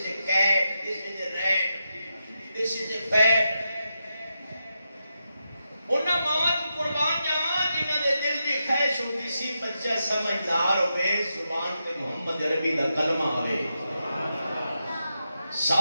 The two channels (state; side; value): inverted; both; correlation -0.87